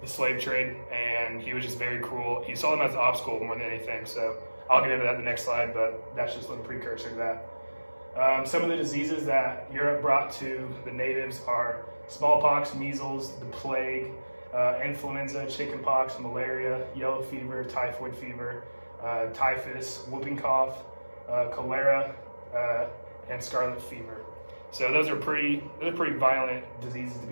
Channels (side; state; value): both; inverted; correlation -1.00